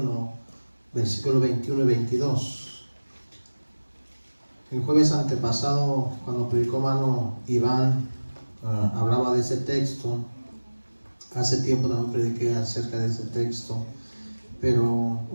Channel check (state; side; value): inverted; both; correlation -1.00